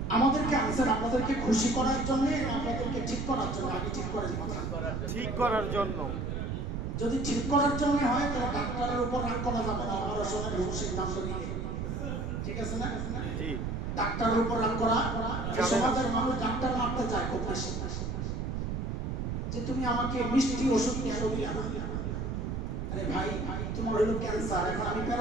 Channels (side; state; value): right; noise; rumble, 3 dB below the sound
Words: আমাদেরকে আনসার আপনাদেরকে খুশি করার জন্য, আপনাদেরকে ঠিক করার জন্য? আগে ঠিক করার কথা, ঠিক করার জন্য। যদি ঠিক করার জন্য হয় তাহলে ডাক্তারের উপর রাগ করা যাবে না, অপারেশনের সিদ্ধান্ত নিয়ে, ঠিক আছে না? জি। ডাক্তারের উপর রাগ করা, সমাজের মানুষ ডাক্তার মারতে চায় খুব বেশি, যে তুমি আমাকে মিষ্টি ওষুধ কেন দিলে? আরে ভাই তোমার হলো ক্যান্সার, এখন আমি